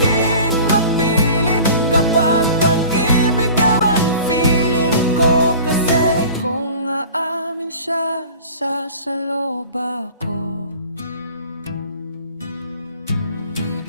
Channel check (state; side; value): inverted; both; correlation -0.42